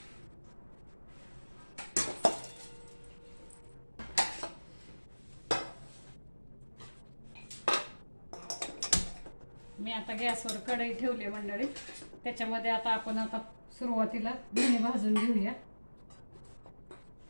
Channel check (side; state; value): both; inverted; correlation -1.00